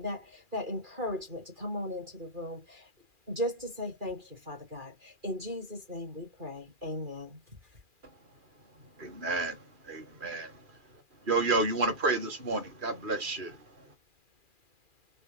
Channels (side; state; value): left; late; 2.4 ms